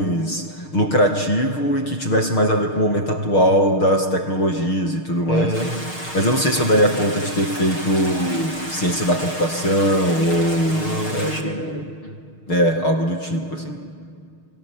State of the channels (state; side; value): late; right; 6.5 ms